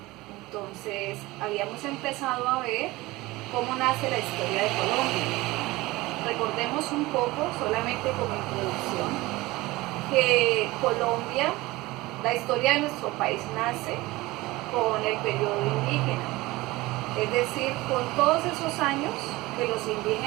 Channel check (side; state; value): left; quieter; 20.1 dB